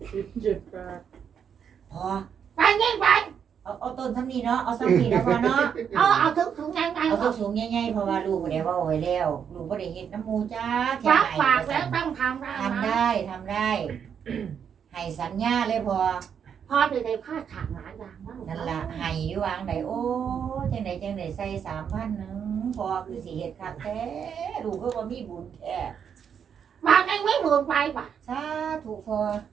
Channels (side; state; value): left; quieter; 7.7 dB